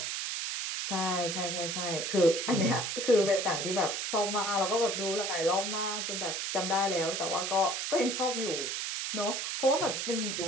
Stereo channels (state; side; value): noise; right; hiss, 2 dB below the sound